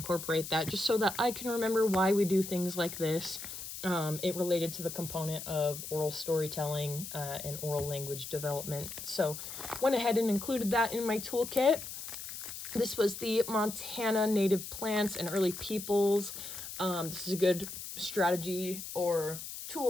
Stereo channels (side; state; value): left; noise; hiss, 9 dB below the sound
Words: that just so that I can remember why we do things like this. It related to the component of oral storytelling and oral language development. So went ahead and included that in my toolkit. This was the Montana Native Plants and Early Peoples. This is a good strategy or